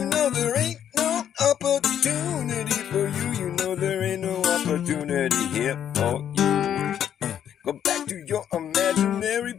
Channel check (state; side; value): quieter; right; 9.7 dB